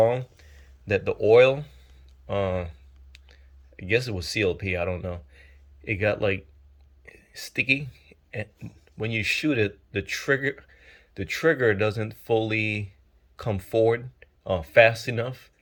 that the oil, I guess it was CLP, I don't know. It got like sticky, and when you shoot it, the trigger doesn't fully come forward fast enough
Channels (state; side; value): identical; both; correlation 1.00